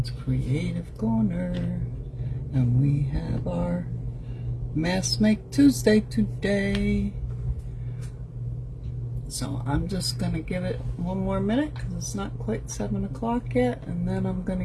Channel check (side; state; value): both; identical; correlation 1.00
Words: Creative Corner. And we have our Mask Make Tuesday today. So I'm just going to give it one more minute because it's not quite 7 o'clock yet. And then I'm going